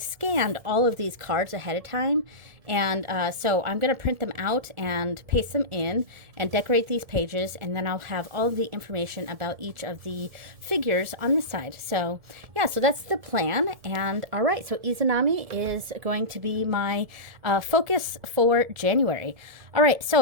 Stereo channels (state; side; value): late; left; 1.7 ms